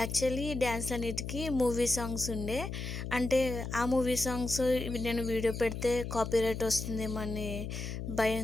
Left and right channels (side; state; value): left; noise; hum, 6 dB below the sound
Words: యాక్చువల్లీ డ్యాన్స్ అన్నిటికీ మూవీ సాంగ్స్ ఉండే. అంటే ఆ మూవీ సాంగ్స్ నేను వీడియో పెడితే కాపీరైట్ వస్తుందేమో అని